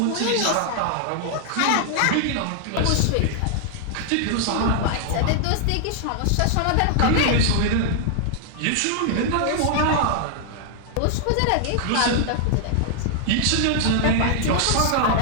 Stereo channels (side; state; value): both; different; correlation 0.00